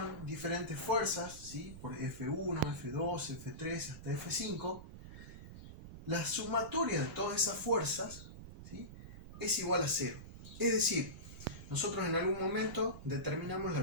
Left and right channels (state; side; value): noise; right; rumble, 13 dB below the sound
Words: diferentes fuerzas, ¿sí?, por F1, F2, F3 hasta F5, la sumatoria de todas esas fuerzas, ¿sí?, es igual a 0. Es decir, nosotros en algún momento determinamos la